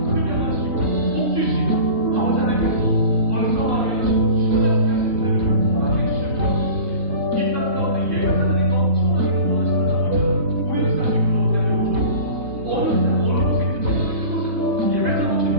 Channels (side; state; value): left; late; 3.6 ms